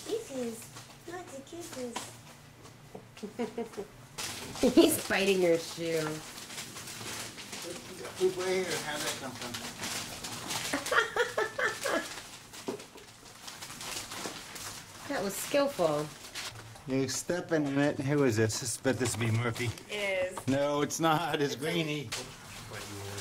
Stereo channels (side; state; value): both; identical; correlation 1.00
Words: Kisses. Lots of kisses. He's biting your shoe. Poop right here. How'd that come from? That was skillful. You're stepping in it. Who is this? I bet this will be Murphy. It is. No, it's not. It's Greenie.